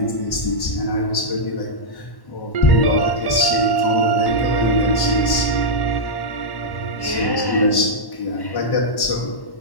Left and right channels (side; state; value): right; late; 1.1 ms